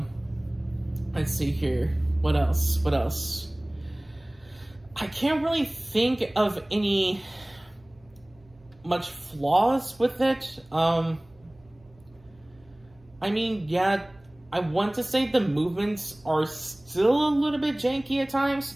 Let's see here. What else? I can't really think of any much flaws with it. I mean, yeah, I want to say the movements are still a little bit janky at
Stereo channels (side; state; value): right; noise; hum, 29 dB below the sound